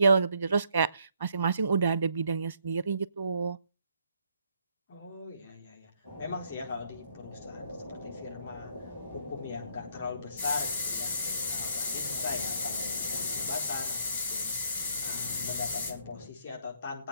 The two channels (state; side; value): inverted; both; correlation -0.70